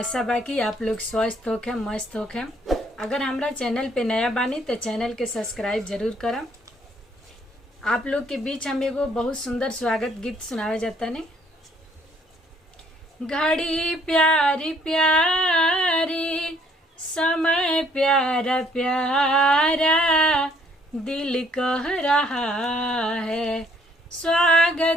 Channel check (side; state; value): both; normal; correlation 0.64